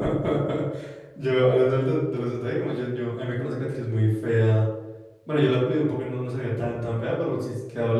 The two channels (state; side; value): identical; both; correlation 1.00